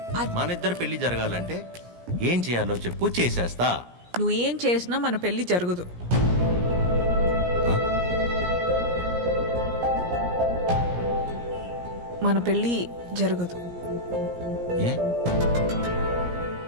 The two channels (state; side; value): late; left; 17 ms